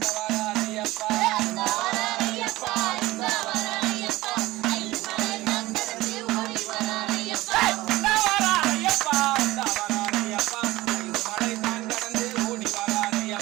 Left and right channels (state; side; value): quieter; left; 18.4 dB